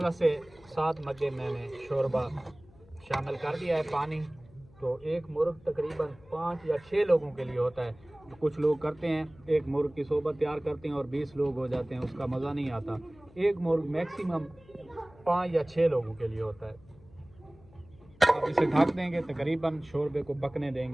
से 7 मग्गे मैंने शोरबा शामिल कर दिया है पानी। तो एक मुर्ग तकरीबन 5 या 6 लोगों के लिए होता है। तो कुछ लोग करते हैं एक मुर्ग की सोबत तैयार करते हैं और 20 लोग हो जाते हैं, उसका मज़ा नहीं आता। एक मुर्ग मैक्सिमम 5 या 6 लोगों के लिए होता है। अब इसे ढक देंगे, तकरीबन शोरबे को पकने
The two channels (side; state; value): left; noise; hum, 25 dB below the sound